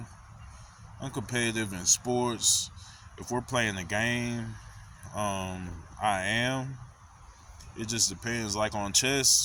I'm competitive in sports. If we're playing a game, I am. It just depends. Like on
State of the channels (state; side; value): identical; both; correlation 1.00